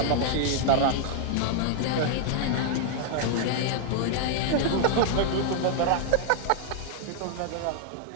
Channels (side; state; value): both; different; correlation 0.00